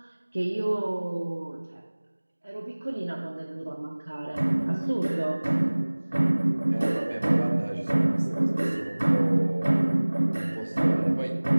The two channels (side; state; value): both; inverted; correlation -1.00